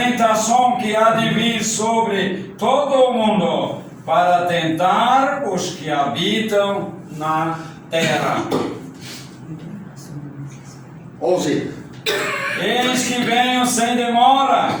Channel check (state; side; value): identical; both; correlation 1.00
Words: que há de vir sobre todo o mundo, para tentar os que habitam na terra. 11. Eis que venho sem demora,